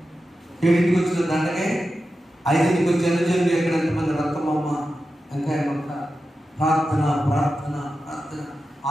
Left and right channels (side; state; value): both; normal; correlation 0.91